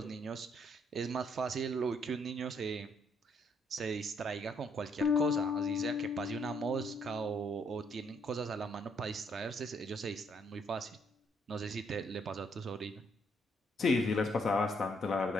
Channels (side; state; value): both; normal; correlation 0.70